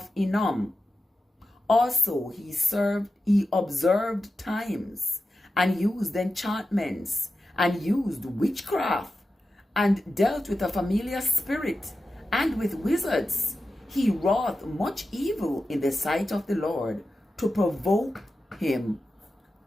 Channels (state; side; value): normal; both; correlation 0.92